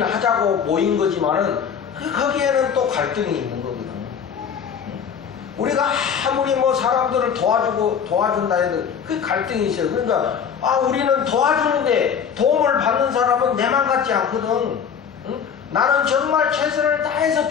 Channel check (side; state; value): right; quieter; 7.3 dB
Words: 하자고 모인 거지만은 거기에는 또 갈등이 있는 거거든. 우리가 아무리 뭐 사람들을 도와준다 해도 그 갈등이 있어요. 그러니까 우리는 도와주는데 도움을 받는 사람은 내만 같지 않거든. 응? 나는 정말 최선을 다해서